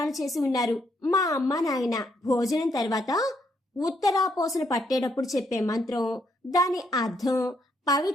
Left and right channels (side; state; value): both; normal; correlation 0.74